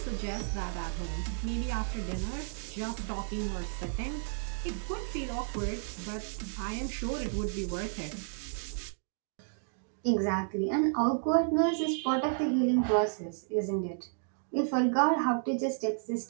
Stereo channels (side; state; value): left; silent; digital silence